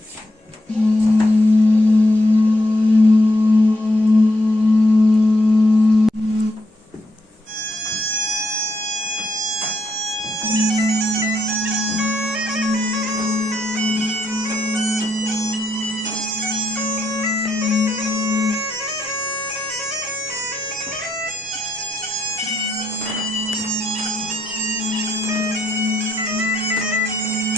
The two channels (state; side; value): normal; both; correlation 0.78